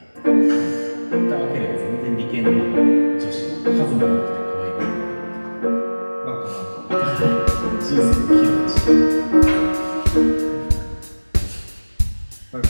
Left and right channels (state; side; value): inverted; both; correlation -1.00